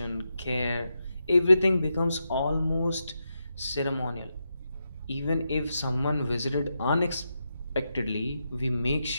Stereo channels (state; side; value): inverted; both; correlation -0.86